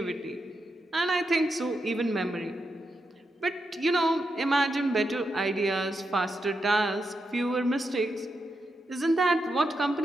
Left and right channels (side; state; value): both; normal; correlation 0.85